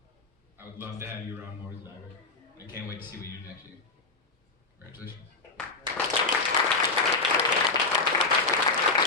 I would love to have you around more as a diver. I can't wait to see what you do next year. Congratulations.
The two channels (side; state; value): right; quieter; 3.7 dB